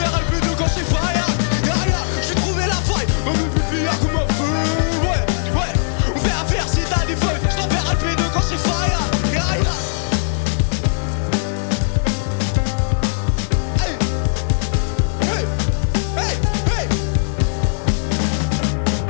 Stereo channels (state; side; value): silent; right; digital silence